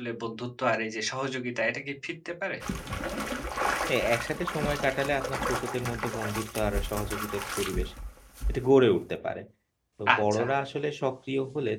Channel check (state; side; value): identical; both; correlation 1.00